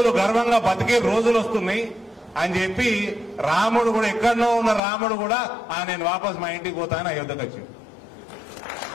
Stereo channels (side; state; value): right; drops out; at 4.8 s